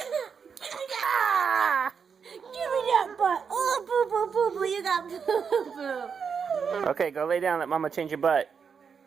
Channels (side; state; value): left; quieter; 6.3 dB